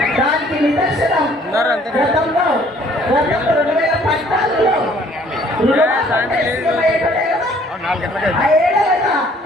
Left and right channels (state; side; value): normal; both; correlation 0.59